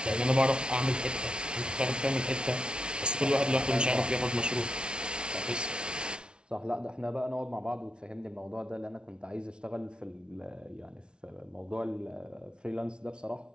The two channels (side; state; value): left; late; 0.056 ms